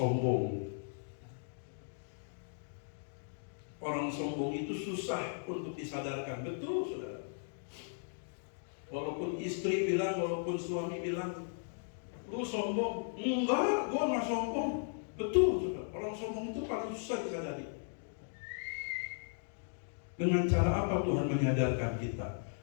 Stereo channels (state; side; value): silent; right; digital silence